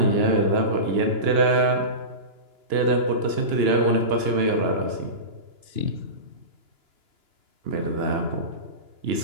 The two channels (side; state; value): left; late; 2.9 ms